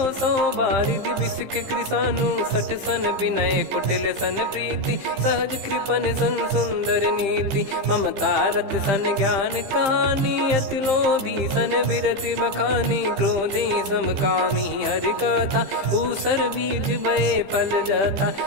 बारिद बिसक कृसानु। 60 सन विनय कुटिल सन प्रीति सहज कृपन सन सुंदर नीति। ममता रत सन ज्ञान कहानी अति लोभी सन बिरति बखानी। क्रोधी समकामी हरि कथा ऊसर बीज भय फल जता।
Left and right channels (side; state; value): left; late; 15 ms